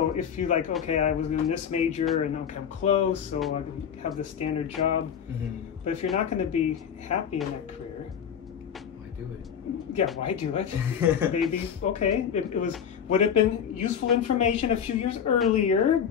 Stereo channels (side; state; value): right; quieter; 8.1 dB